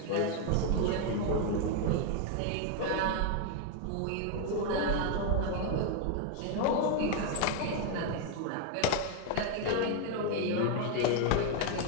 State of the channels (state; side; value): different; both; correlation 0.01